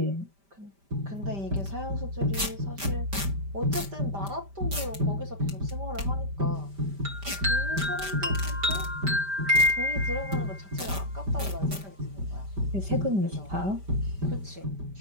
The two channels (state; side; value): late; left; 5.1 ms